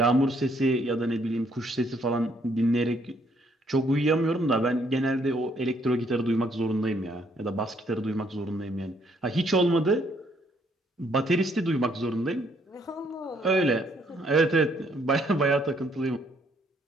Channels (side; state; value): both; normal; correlation 0.68